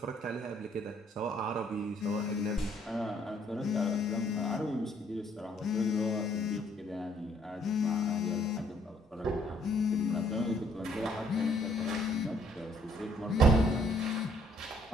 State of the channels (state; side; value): normal; both; correlation 0.65